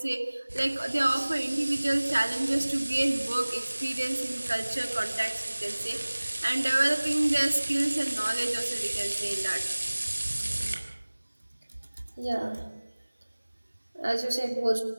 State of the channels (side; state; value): both; inverted; correlation -1.00